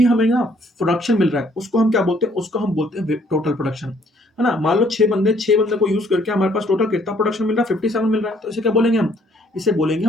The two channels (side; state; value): both; normal; correlation 0.64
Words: हमें ना प्रोडक्शन मिल रहा है उसको हम क्या बोलते हैं? उसको हम बोलते हैं टोटल प्रोडक्शन, है ना। मान लो 6 बंदे को यूज करके हमारे पास टोटल कितना प्रोडक्शन मिल रहा है? 57 मिल रहा है। तो इसे क्या बोलेंगे हम? इसे बोलेंगे